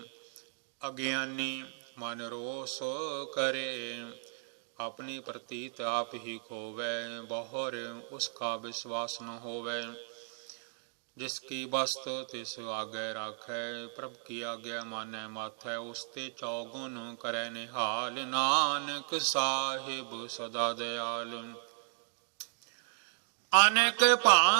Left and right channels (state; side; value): silent; left; digital silence